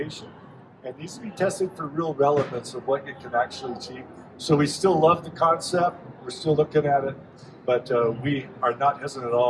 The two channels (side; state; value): both; identical; correlation 1.00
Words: It needs to be tested for real relevance of what it can actually achieve. So we still love the concept. We're still looking at it, but we are not hesitant at